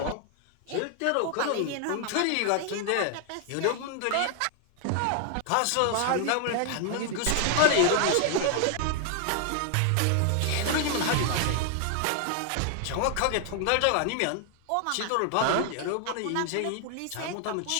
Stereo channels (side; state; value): both; different; correlation 0.00